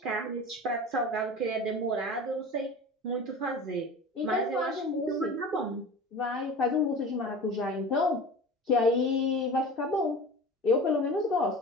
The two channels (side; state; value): both; normal; correlation 0.35